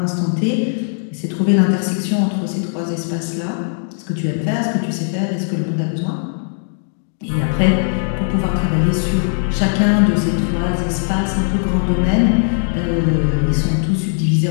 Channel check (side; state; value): right; silent; digital silence